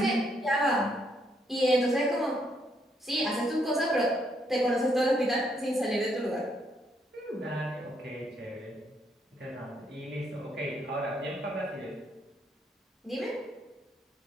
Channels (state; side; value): normal; both; correlation 0.73